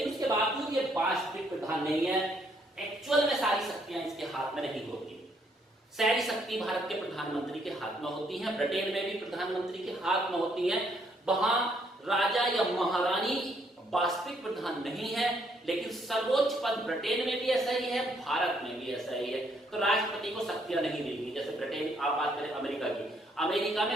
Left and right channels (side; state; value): both; normal; correlation 0.70